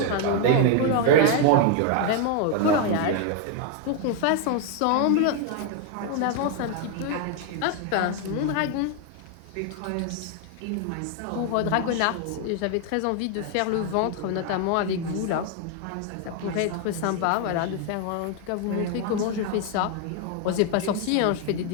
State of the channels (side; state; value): both; different; correlation 0.00